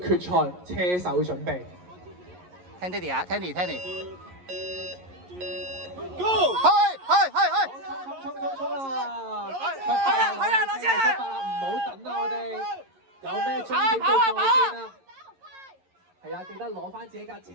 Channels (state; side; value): late; left; 11 ms